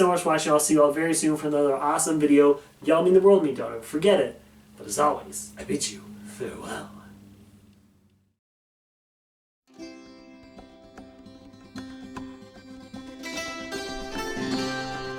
much for watching. I'll see you all very soon for another awesome video. Y'all mean the world to me, don't ever forget it. But as always, I bid you farewell.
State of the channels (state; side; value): identical; both; correlation 1.00